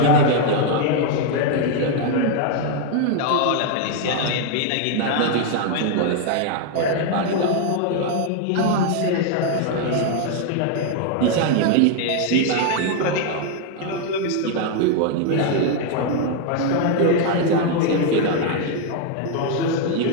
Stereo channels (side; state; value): both; different; correlation 0.00